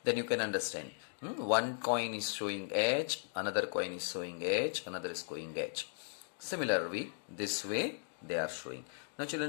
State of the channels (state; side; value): silent; right; digital silence